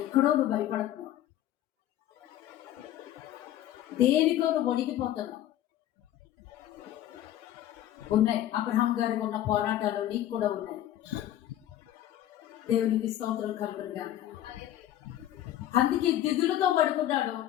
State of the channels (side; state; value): right; quieter; 12.6 dB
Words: నువ్వు భయపడుతున్నావు, దేనికో నువ్వు వణికిపోతున్నావు. ఉన్నాయి. అబ్రహాం గారికి ఉన్న పోరాటాలు నీకు కూడా ఉన్నాయి. దేవునికి స్తోత్రం కలుగునుగా. అందుకే దిగులుతో పడుకున్నాడు.